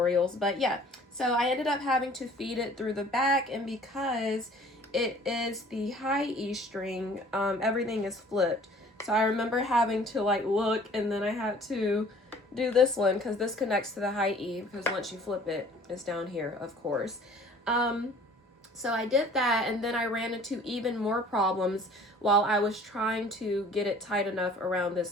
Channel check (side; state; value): both; normal; correlation 0.51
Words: but yeah, so I ended up having to feed it through the back, and because it is the high E string, everything is flipped. So I remember having to like look, and then I had to do this one because this connects to the high E, because once you flip it, it's down here, of course. So I did that, and then I ran into even more problems while I was trying to get it tight enough around this